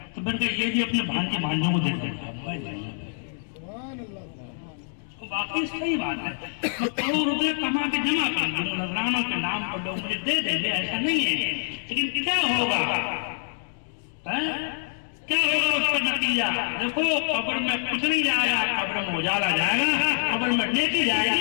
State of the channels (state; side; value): silent; right; digital silence